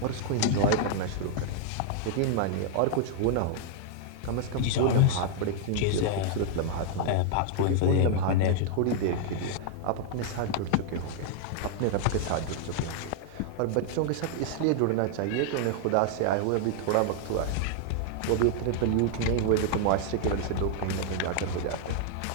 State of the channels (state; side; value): different; both; correlation 0.00